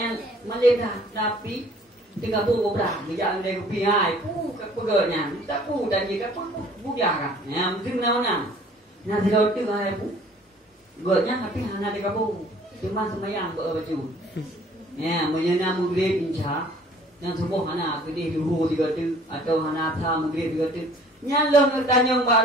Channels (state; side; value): normal; both; correlation 0.54